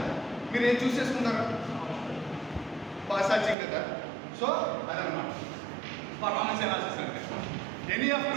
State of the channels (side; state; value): left; drops out; at 3.6 s